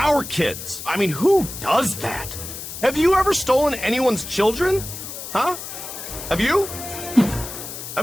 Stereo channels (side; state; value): left; noise; hiss, 10 dB below the sound